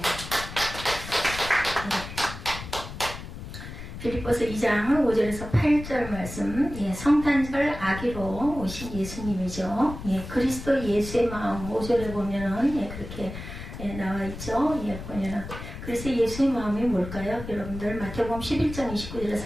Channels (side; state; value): left; noise; rumble, 10 dB below the sound